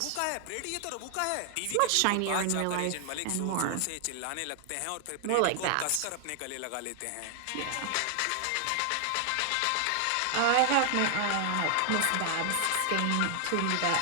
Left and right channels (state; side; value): different; both; correlation 0.00